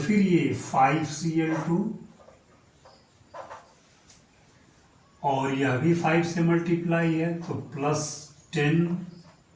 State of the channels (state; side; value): identical; both; correlation 1.00